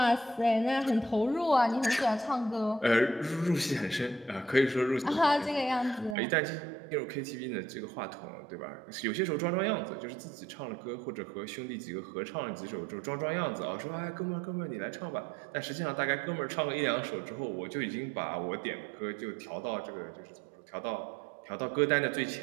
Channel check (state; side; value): drops out; left; at 6.2 s